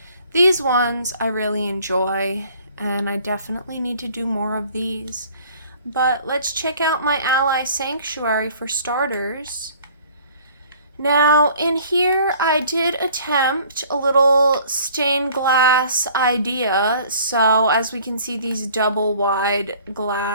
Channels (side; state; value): both; inverted; correlation -0.53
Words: these ones I really enjoy, and I definitely need to do more of these. But let's check out my ally sanctuary for starters. Now, in here, I did attempt a little stained glass idea. So, as we can see, these double wide